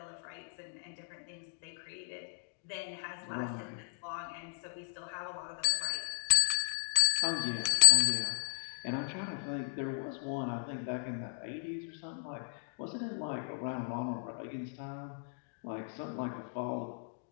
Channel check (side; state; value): right; silent; digital silence